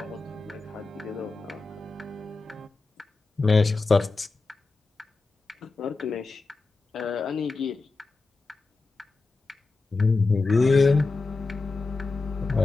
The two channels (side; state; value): right; quieter; 3.8 dB